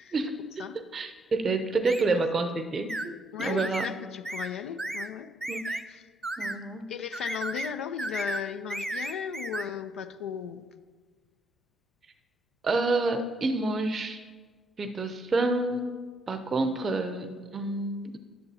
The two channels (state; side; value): normal; both; correlation 0.73